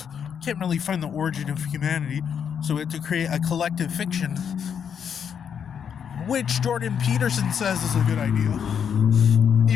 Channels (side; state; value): right; quieter; 7.7 dB